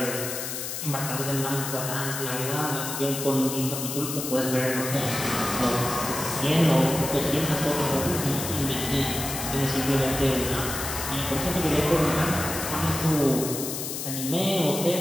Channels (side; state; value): left; noise; hiss, 5 dB below the sound